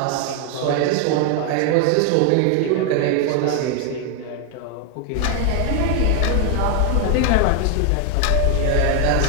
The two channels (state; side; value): different; both; correlation 0.00